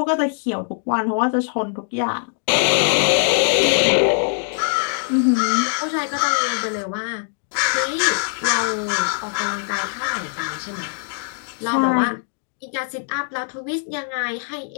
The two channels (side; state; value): right; silent; 60 dB below the other